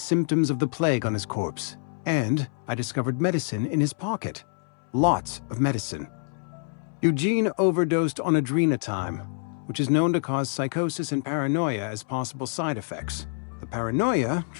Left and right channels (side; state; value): right; silent; 61 dB below the other